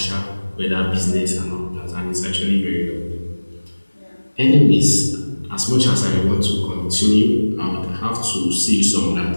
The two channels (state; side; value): inverted; both; correlation -1.00